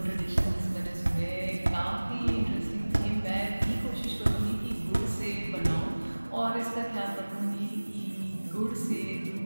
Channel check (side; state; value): both; inverted; correlation -1.00